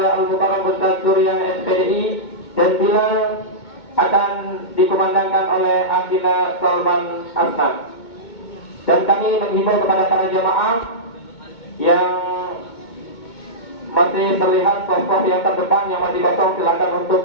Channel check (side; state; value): right; late; 2.2 ms